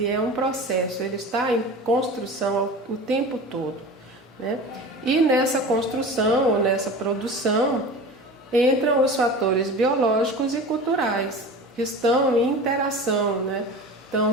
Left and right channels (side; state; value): both; normal; correlation 0.34